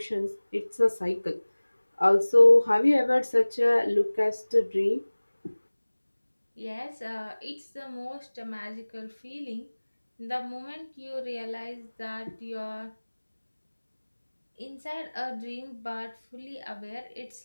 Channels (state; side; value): inverted; both; correlation -1.00